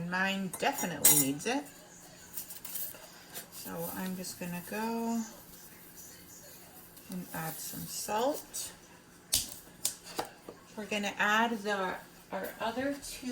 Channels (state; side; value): identical; both; correlation 1.00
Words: mine definitely needs it. So I'm just going to go and add some salt. We're going to add our other